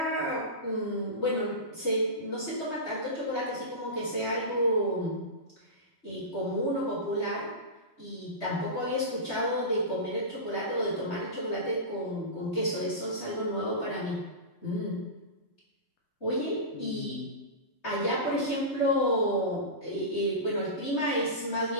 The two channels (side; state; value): right; late; 3.2 ms